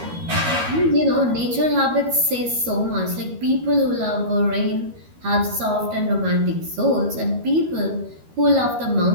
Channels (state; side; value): late; left; 13 ms